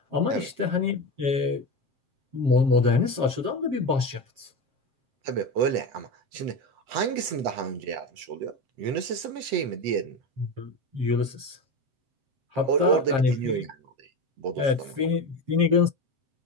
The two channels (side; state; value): left; late; 7.5 ms